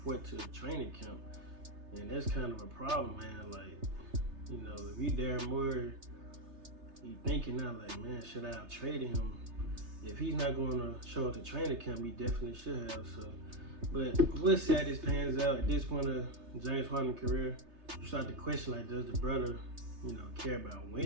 to training camp, and that's kind of a problem, man. Like, you know, if you Darren Moore, you thinking now, like, man, should I have traded him? If he's not going to show up to training camp, he definitely should have. So, but we'll see how this pans out. At this point of James Harden's career, you start to question, like, does the brother, you know, care about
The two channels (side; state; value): left; late; 3.3 ms